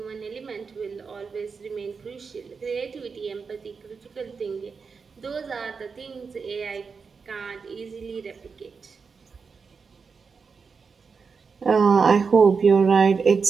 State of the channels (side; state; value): left; quieter; 5.3 dB